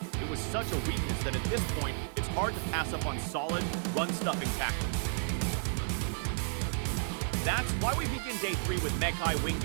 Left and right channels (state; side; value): silent; left; 55 dB below the other